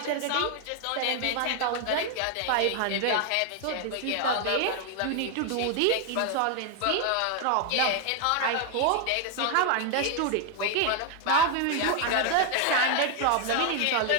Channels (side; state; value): both; different; correlation 0.01